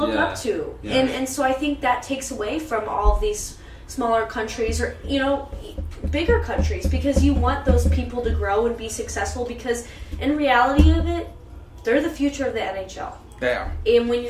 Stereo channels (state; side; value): identical; both; correlation 1.00